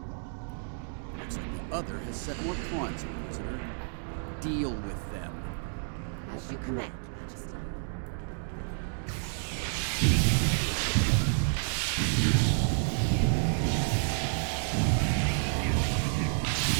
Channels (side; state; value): left; silent; 58 dB below the other